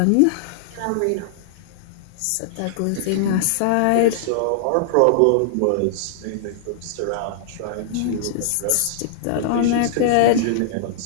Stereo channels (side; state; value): both; different; correlation -0.01